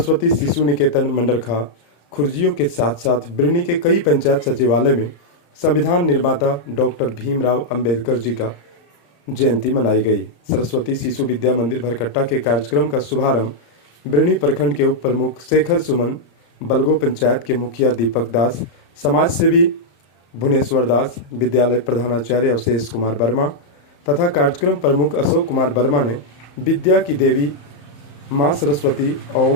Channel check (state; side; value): late; right; 34 ms